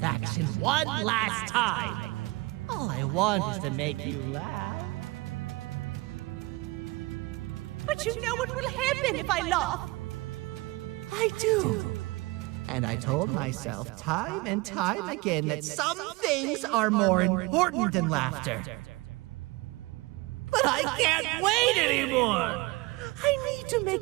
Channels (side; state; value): left; quieter; 22.7 dB